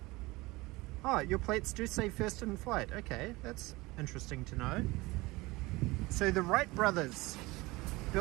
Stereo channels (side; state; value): left; quieter; 21.7 dB